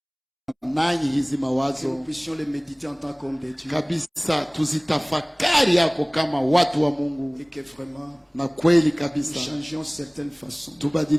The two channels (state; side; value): identical; both; correlation 1.00